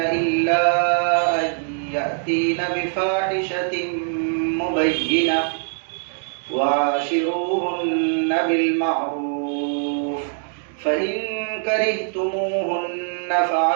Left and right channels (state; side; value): silent; left; digital silence